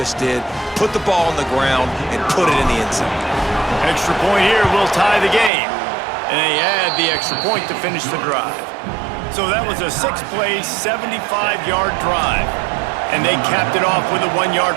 did. Put the ball on the ground and put it in the end zone. Extra point here will tie the game. And they add the extra point to finish the drive. So that was a 6-play, 75-yard drive. And they capped it off with a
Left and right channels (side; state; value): left; drops out; at 5.5 s